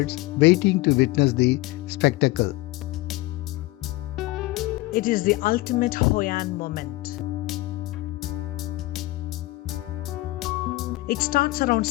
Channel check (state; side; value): quieter; right; 19.3 dB